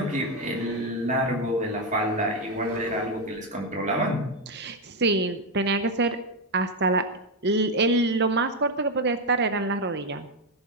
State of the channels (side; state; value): both; normal; correlation 0.05